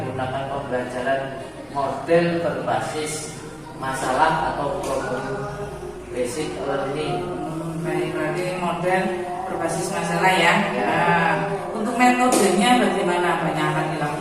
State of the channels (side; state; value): both; identical; correlation 1.00